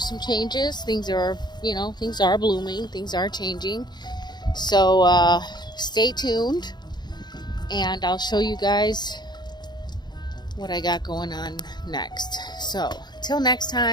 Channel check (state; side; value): late; right; 0.21 ms